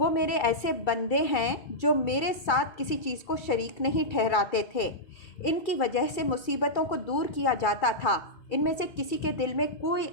میرے ایسے بندے ہیں جو میرے ساتھ کسی چیز کو شریک نہیں ٹھہراتے تھے، ان کی وجہ سے مصیبتوں کو دور کیا جاتا تھا۔ ان میں سے کسی کے دل میں کوئی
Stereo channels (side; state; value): right; late; 2.3 ms